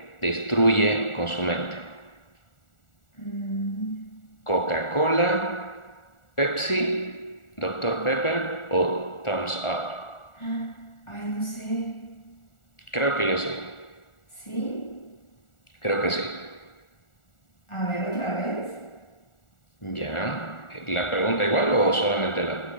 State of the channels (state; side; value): late; right; 1.4 ms